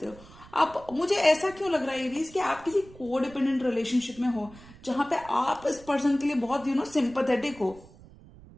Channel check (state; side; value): noise; right; rumble, 21 dB below the sound